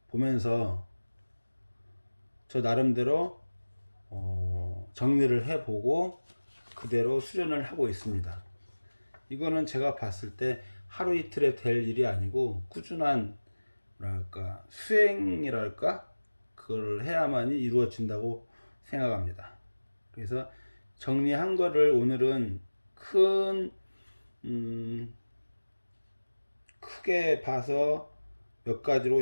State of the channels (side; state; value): both; inverted; correlation -1.00